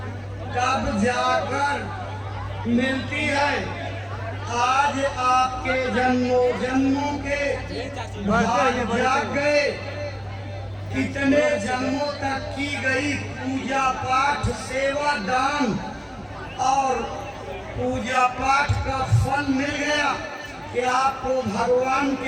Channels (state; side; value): identical; both; correlation 1.00